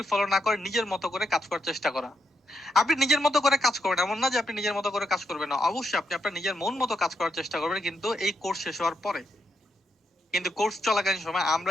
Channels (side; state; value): both; normal; correlation 0.80